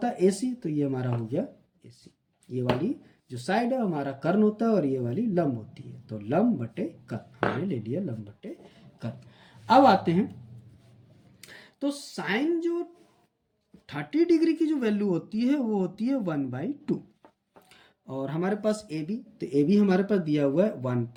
है AC, तो ये हमारा हो गया AC। ये वाली जो साइड है हमारा कर्ण होता है और ये वाली लंब होती है, तो लंब बटे कर्ण हमने ले लिया, लंब बटे कर्ण। अब आते हैं, तो साइन जो 30 डिग्री की जो वैल्यू होती है वो होती है 1/2, और हमारे पास AB, तो AB हमारे पास दिया हुआ है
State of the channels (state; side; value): identical; both; correlation 1.00